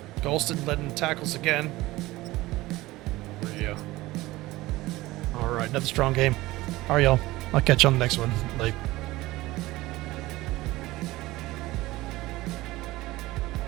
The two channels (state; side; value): quieter; left; 18.6 dB